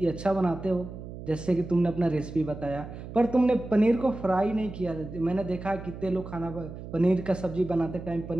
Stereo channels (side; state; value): right; noise; hum, 11 dB below the sound